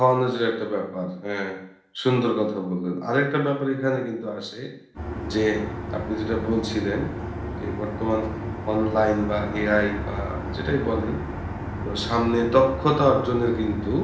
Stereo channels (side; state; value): both; identical; correlation 1.00